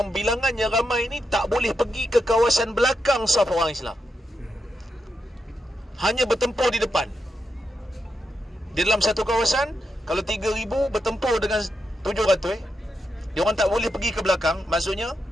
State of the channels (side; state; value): both; normal; correlation 0.85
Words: bilangannya ramai ni tak boleh pergi ke kawasan belakang saf orang Islam, hanya bertempur di depan. Di dalam satu kawasan, kalau 3,000 bertempur dengan 700, dia orang tak boleh pergi ke belakang. Maksudnya